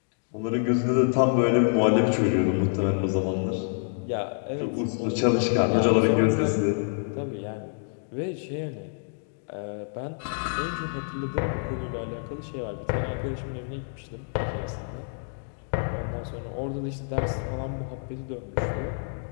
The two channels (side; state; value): right; silent; digital silence